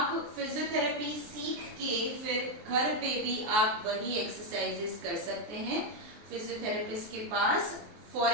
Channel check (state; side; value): late; left; 23 ms